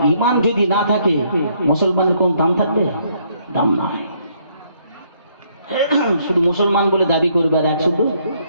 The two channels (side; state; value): both; inverted; correlation -0.69